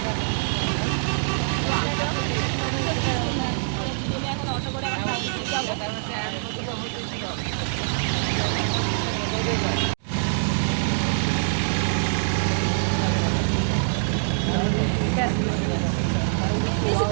এখন অটো করে টাউনশিপ যাবো।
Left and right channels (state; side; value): silent; left; digital silence